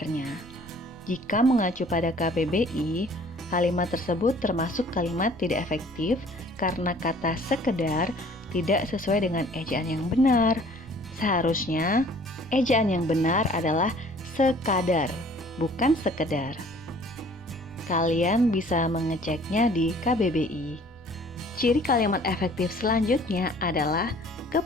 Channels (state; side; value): noise; right; rumble, 23 dB below the sound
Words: Jika mengacu pada KBBI, kalimat tersebut termasuk kalimat tidak efektif karena kata sekedar tidak sesuai dengan ejaan yang benar. Seharusnya ejaan yang benar adalah sekadar, bukan sekedar. Kalian bisa mengeceknya di KBBI. Ciri kalimat efektif selanjutnya adalah